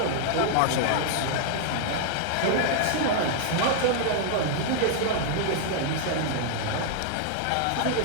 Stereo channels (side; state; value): both; different; correlation -0.01